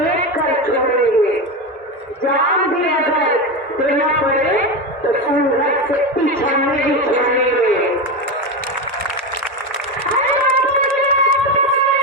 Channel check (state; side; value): normal; both; correlation 0.17